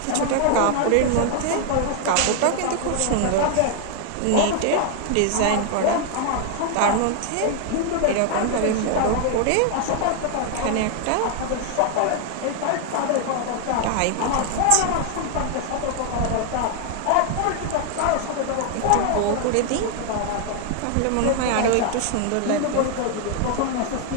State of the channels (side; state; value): both; different; correlation 0.00